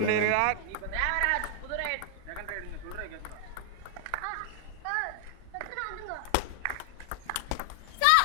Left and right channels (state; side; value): different; both; correlation 0.00